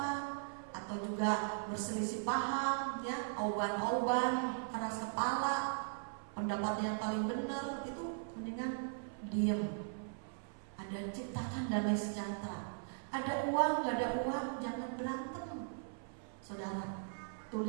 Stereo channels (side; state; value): left; silent; 52 dB below the other